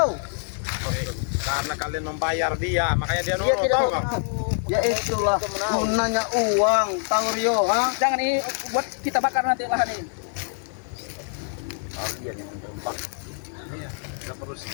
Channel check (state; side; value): silent; right; 62 dB below the other